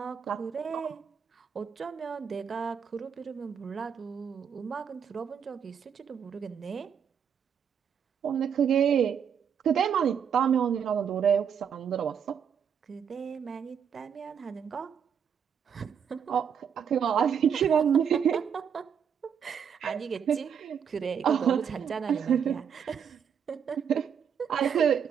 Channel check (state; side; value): quieter; left; 7.6 dB